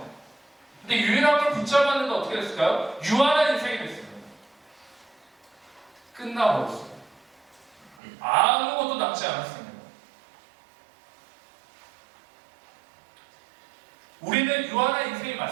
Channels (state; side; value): drops out; left; at 8.0 s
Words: 근데 유일한 걸 붙잡았는데 어떻게 됐을까요? 유한한 인생이 됐습니다. 끝나버렸어요. 아무것도 남지 않았습니다. 우리는 유한한 인생이